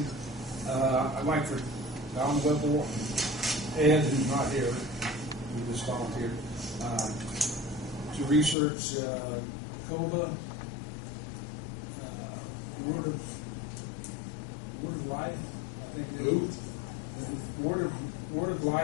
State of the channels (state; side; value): drops out; right; at 8.6 s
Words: I'd like for Don Whipple, Ed, who's not here, who just volunteered, to research COBA, Word of Life, I think it is. Who? Word of